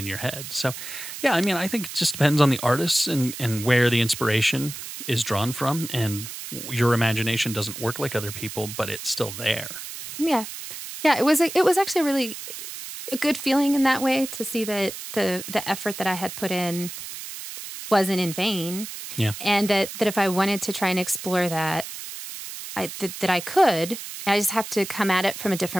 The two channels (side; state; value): right; noise; hiss, 10 dB below the sound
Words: your head. So, yeah, I mean, I think it just depends on the artists and where the inspiration is drawn from. And your imagination doesn't work like other people, but it's still there. Yeah. Yeah. It was actually really a good feeling in that way to see that the effort that I had put in wasn't in vain. Yeah. And that if I wanted to try and explore that, that I could. I just have to come at it from a